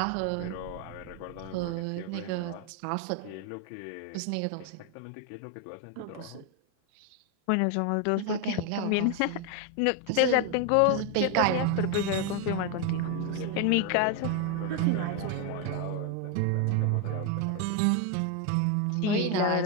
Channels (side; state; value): both; different; correlation 0.01